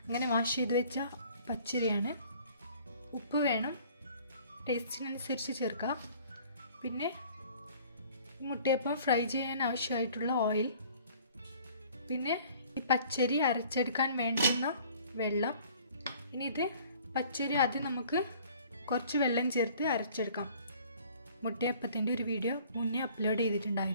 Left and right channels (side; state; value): both; inverted; correlation -0.53